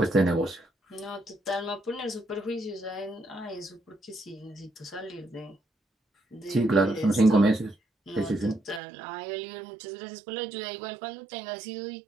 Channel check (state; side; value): drops out; left; at 8.8 s